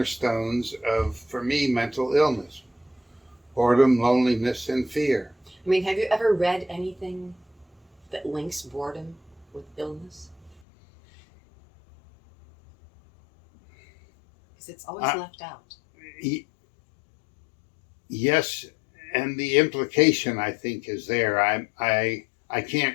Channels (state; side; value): drops out; right; at 10.6 s